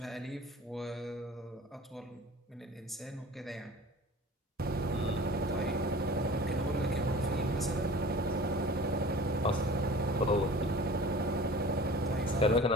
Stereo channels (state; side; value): normal; both; correlation 0.41